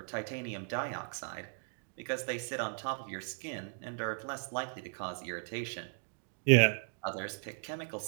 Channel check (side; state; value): left; silent; 53 dB below the other